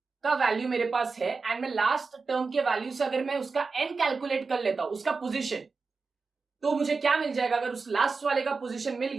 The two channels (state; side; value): quieter; left; 4.5 dB